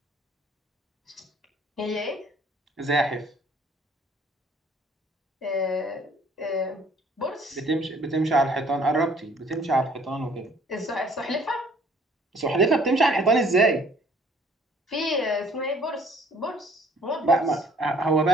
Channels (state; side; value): normal; both; correlation 0.58